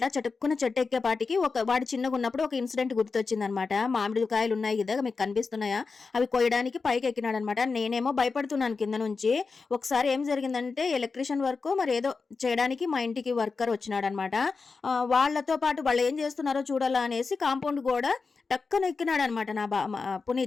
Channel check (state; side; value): quieter; right; 4.6 dB